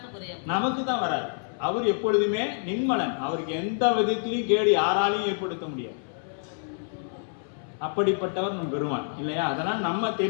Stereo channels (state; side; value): silent; right; 60 dB below the other